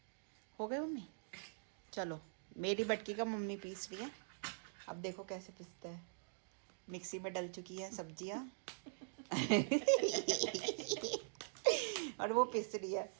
हो गए मम्मी? चलो, मेरी बटकी का मम्मी पीस रही है। अब देखो कैसे पिसते हैं। मिक्सी में डल चुकी है सब्जियां। और वो पिस रही है।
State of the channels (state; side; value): silent; left; digital silence